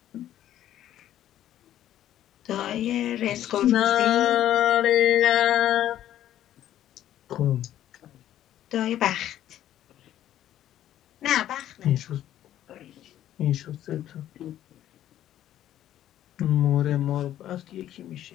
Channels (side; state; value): right; quieter; 12.1 dB